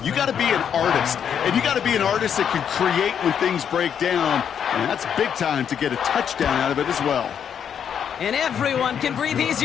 You got to be an artist. And you got to be an artist that can create when things break down. And that's big time to get a touchdown out of it as well. And everyone can breathe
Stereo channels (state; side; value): quieter; right; 8.2 dB